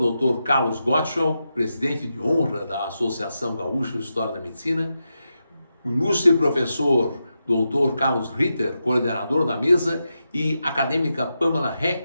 Carlos Gottschall, presidente de honra da Associação Gaúcha de História da Medicina. Ilustre professor Dr. Carlos Ritter, coordenador da mesa, e acadêmica Pamela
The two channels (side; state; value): both; inverted; correlation -0.88